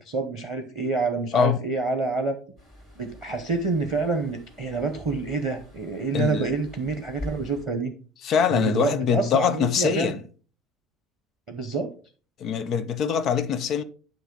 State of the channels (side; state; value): both; normal; correlation 0.43